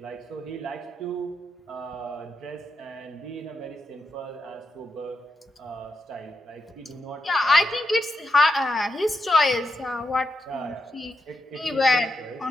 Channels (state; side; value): normal; both; correlation 0.84